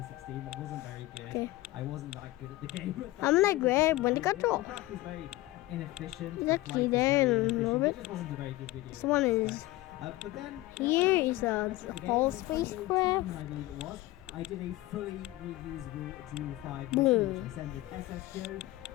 That wasn't very good. Okay. I wasn't that good at the game. I'm gonna grab one to control. The craft was very inefficient. Is the that flight was there very a little inefficient. bit? It just wasn't a very good video. This one is But then Here is a whole spacecraft. I believe it was. I did a fully reusable Joule 5 Boom. mission, which I sent with SSGO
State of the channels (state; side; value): quieter; right; 18.1 dB